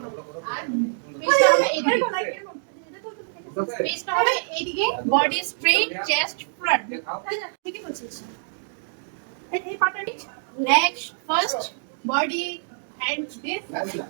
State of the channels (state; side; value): silent; left; digital silence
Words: আর পেছটা হবে এইদিকে, পেছটা হবে এইদিকে, বডি স্ট্রেট, চেস্ট ফ্রন্ট। ঠিকই বলছিস। এই পার্টটা নিচ, next first body hands this.